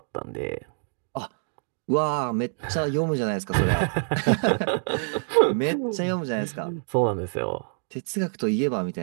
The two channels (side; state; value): left; silent; 61 dB below the other